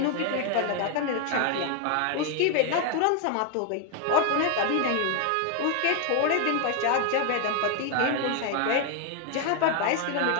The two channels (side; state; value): both; different; correlation 0.01